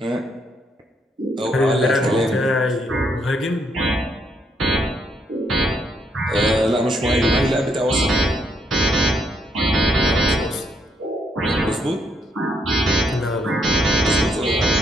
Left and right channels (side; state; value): both; normal; correlation 0.75